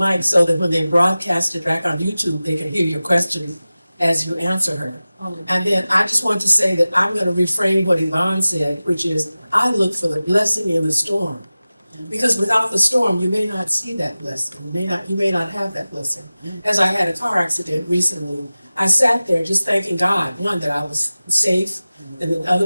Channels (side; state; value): both; inverted; correlation -0.97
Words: so that when they broadcast it back on YouTube, they can hear your question as you answer her. And then I just want to say that I'm going to reframe what Yvonne said, which is I look for the blessing in the storm. Because without the storm, you may not see that blessing. You may not have that blessing. As I had a car accident recently, I sat there just thanking God, one, that I was safe, and the